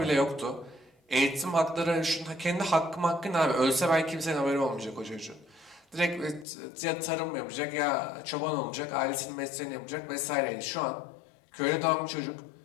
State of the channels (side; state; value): right; drops out; at 6.5 s